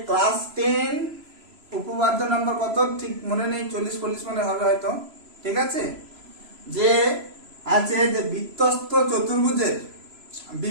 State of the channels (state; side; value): late; left; 3.0 ms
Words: ক্লাস 10 উপপাদ্য নম্বর কত ঠিক মনে নেই, 40-40 মনে হবে হয়তো, ঠিক আছে, যে আছে যে বৃত্তস্থ চতুর্ভুজের